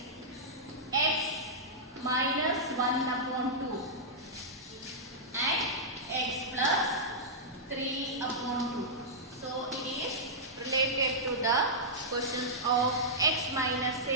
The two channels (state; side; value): normal; both; correlation -0.11